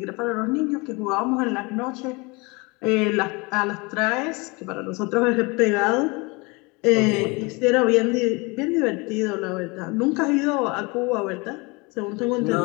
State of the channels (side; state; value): right; quieter; 27.0 dB